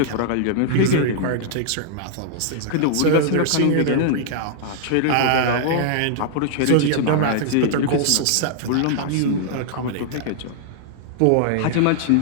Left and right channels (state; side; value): different; both; correlation -0.01